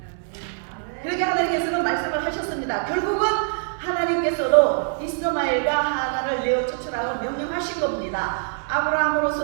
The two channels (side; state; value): left; silent; digital silence